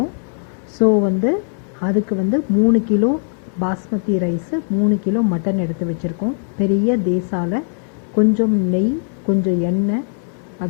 ஸோ அதுக்கு 3 kilo basmati rice, 3 kilo mutton எடுத்து வச்சுருக்கோம். பெரிய தேசால கொஞ்சம் நெய், கொஞ்சம் எண்ணெய்,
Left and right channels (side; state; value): right; silent; 56 dB below the other